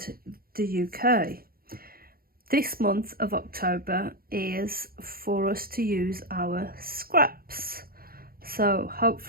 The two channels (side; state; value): left; late; 0.43 ms